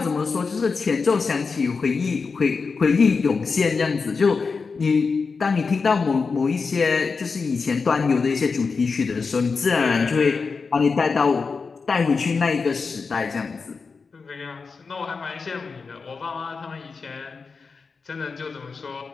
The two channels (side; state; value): right; quieter; 4.8 dB